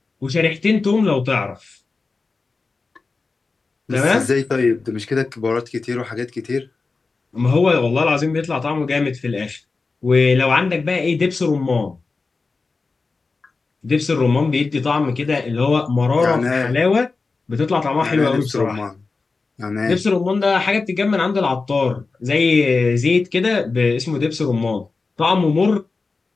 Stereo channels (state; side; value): quieter; right; 4.1 dB